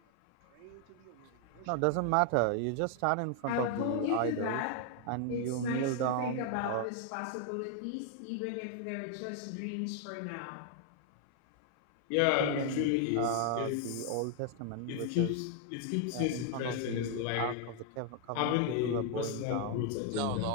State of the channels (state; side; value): different; both; correlation 0.00